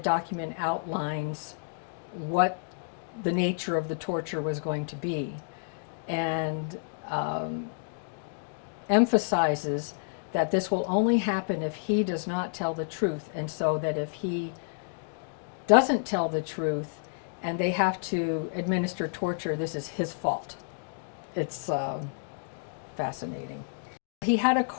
outlines what the nature of the torture was going to be, and emphasizes that this will only happen if he does not tell the truth, and so that if he doesn't tell the truth and they have to administer torture, this is his fault. It's fascinating. He had a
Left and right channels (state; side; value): silent; right; digital silence